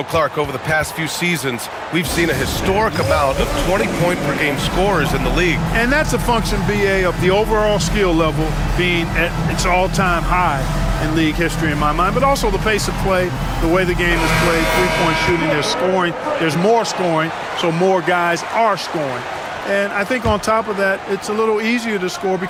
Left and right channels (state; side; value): identical; both; correlation 1.00